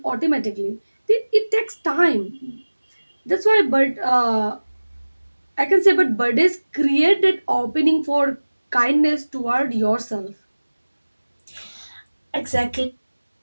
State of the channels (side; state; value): both; inverted; correlation -1.00